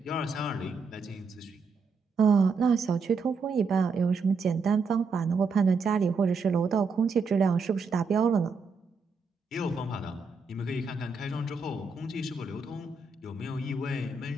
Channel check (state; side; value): quieter; left; 4.4 dB